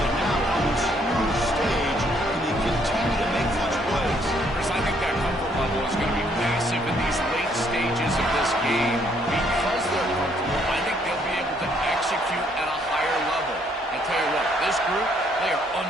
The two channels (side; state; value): both; normal; correlation 0.68